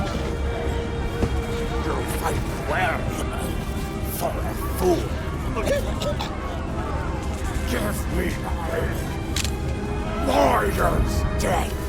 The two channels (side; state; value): both; identical; correlation 1.00